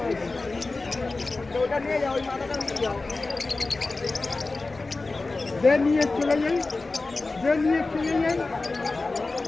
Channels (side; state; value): right; quieter; 3.5 dB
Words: ওটা নিয়ে যাও, ওই মাথাটা নিয়ে যাও, নিয়ে চলে যাই, নিয়ে চলে যাই।